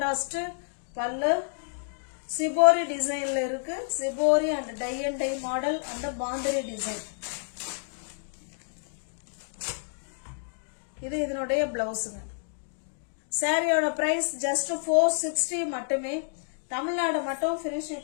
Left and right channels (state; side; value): silent; right; digital silence